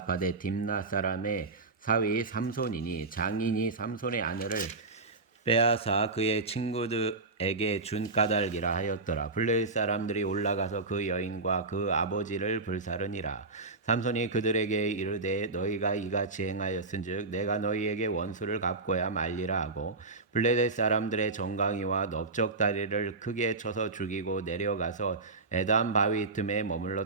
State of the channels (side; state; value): left; quieter; 3.6 dB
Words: 딥나 사람의 사위 삼손이니 장인이 삼손의 아내를 빼앗아 그의 친구들에게 준 까닭이라 하였더라. 블레셋 사람들이 올라가서 그 여인과 그 아버지를 불사르니라. 삼손이 그들에게 이르되 너희가 이같이 행하였은즉 내가 너희에게 원수를 갚고야 말리라 하고 블레셋 사람들의 정강이와 넓적다리를 크게 쳐서 죽이고 내려가서 에담 바위 틈에